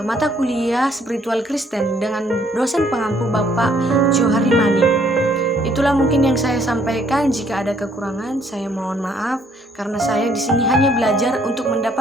mata kuliah spiritual Kristen dengan dosen pengampu Bapak Johari Manik. Itulah mungkin yang saya sampaikan. Jika ada kekurangan, saya mohon maaf karena saya di sini hanya belajar untuk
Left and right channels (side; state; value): both; normal; correlation 0.65